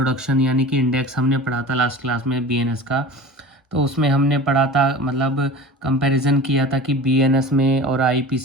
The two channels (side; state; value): both; normal; correlation 0.36